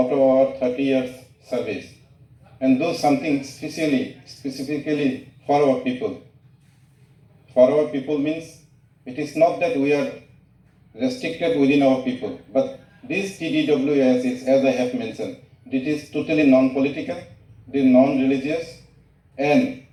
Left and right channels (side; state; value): both; identical; correlation 1.00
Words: of our 30 years service and do something specifically for our people. For our people means it is not that we are restricted within our people, but this TDWS is, as I have mentioned, it is totally non-political, it is non-religious, and